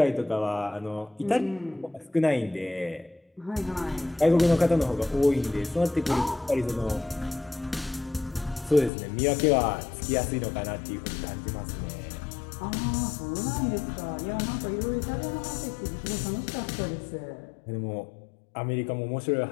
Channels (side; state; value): right; drops out; at 8.9 s